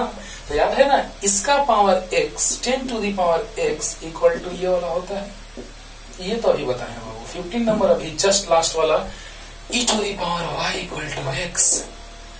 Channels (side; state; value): both; identical; correlation 1.00